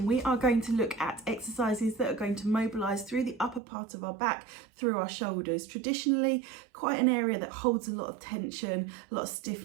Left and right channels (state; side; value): drops out; left; at 3.6 s